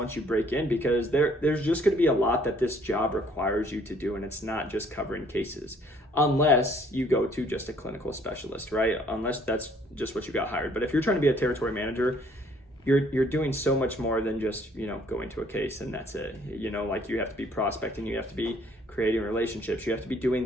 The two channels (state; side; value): normal; both; correlation 0.61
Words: you break in, because there's just going to be a lot that this job requires you to do. And it's not just covering cases, unless you go to just a clinical specialist, right? Unless that's just what you got hired. But if you're trying to be a territory manager, you're doing so much more than just, going to a case and that's it. You have to be prospecting, you have to be creating relationships, you have to be